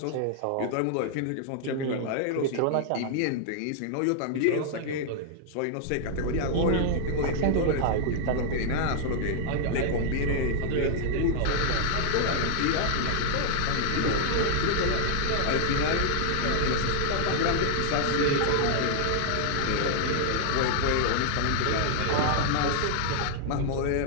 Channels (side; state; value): both; different; correlation -0.01